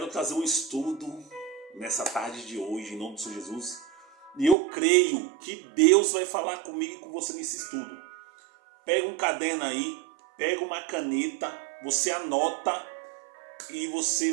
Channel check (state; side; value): drops out; left; at 4.5 s